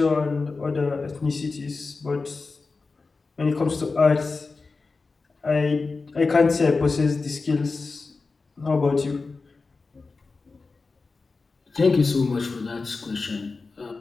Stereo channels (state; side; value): quieter; right; 4.1 dB